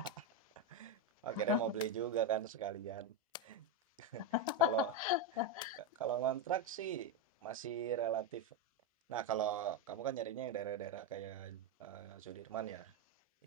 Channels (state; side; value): normal; both; correlation 0.08